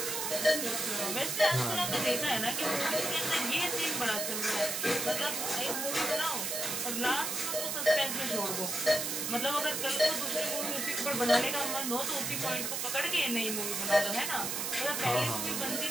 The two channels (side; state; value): right; noise; hiss, 1 dB below the sound